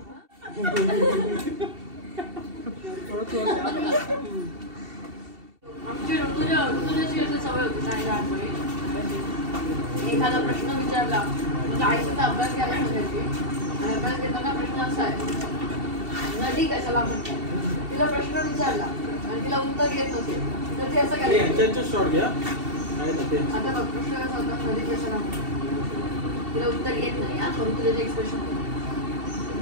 आमची ऋतुजाची अशी सवय होती नाही लहानपणी. एखादा प्रश्न विचारला म्हणजे आईचा अभ्यास घ्यायला सांगायची आणि अभ्यास घेताना प्रश्न असा आहे नदी कशाला म्हणतात. तिला प्रश्न विचारला आणि तिला उत्तर येत नसेल तर ते असं करायचं. शॉर्ट घ्या. आता बघ प्रश्न कसा होता नदी कशाला म्हणतात. तिला उत्तर येत नाही हा परंतु त्याचे एक्सप्रेशन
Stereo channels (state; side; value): late; left; 2.7 ms